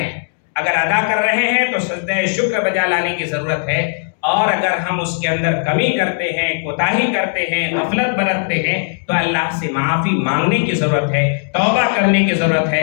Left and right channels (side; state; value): right; silent; digital silence